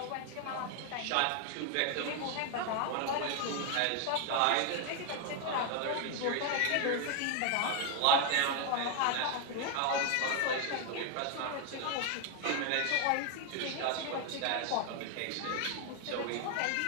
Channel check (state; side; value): different; both; correlation 0.01